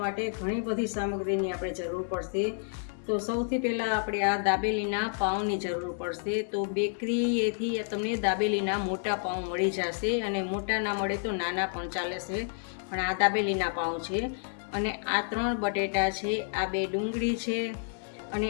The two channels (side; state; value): right; silent; digital silence